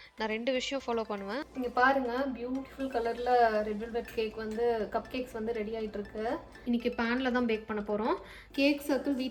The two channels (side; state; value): both; identical; correlation 1.00